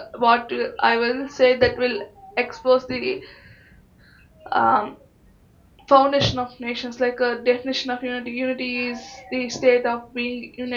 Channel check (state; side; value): identical; both; correlation 1.00